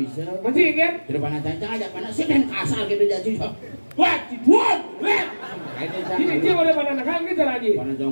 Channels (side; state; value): both; inverted; correlation -1.00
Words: bisa. Masih kan? Tidak pana cancang aja pana sih kan kasar gitu jadi. Wah, dibuat. Ini dia boleh mana nakal kita lagi. Pana jong